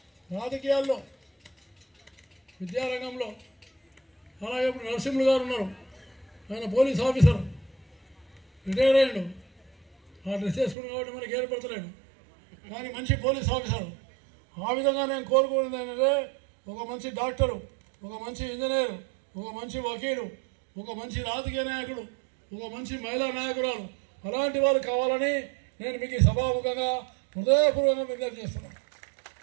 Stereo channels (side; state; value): left; drops out; at 10.8 s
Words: రాజకీయాల్లో, విద్యారంగంలో, అలాగే ఇప్పుడు నరసింహులు గారు ఉన్నారు, ఆయన పోలీస్ ఆఫీసర్, రిటైర్ అయ్యాడు. ఆ డ్రెస్ చేసుకుని కాబట్టి మనకి ఏర్పడతలేడు, కానీ మంచి పోలీస్ ఆఫీసర్. ఆ విధంగా నేను కోరుకునేది ఏంటంటే, ఒక మంచి డాక్టరు, ఒక మంచి ఇంజనీరు, ఒక మంచి వకీలు, ఒక మంచి రాజకీయ నాయకుడు, ఒక మంచి మహిళా నాయకురాలు, అలాంటి వారు కావాలని నేను మీకు సభాముఖంగా హృదయపూర్వకంగా విజ్ఞప్తి చేస్తున్నాను.